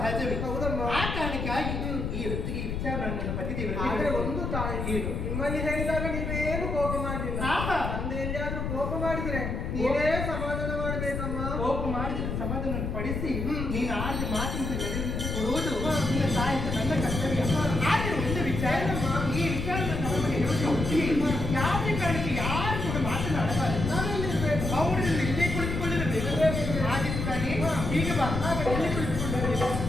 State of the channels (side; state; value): left; noise; rumble, 3 dB below the sound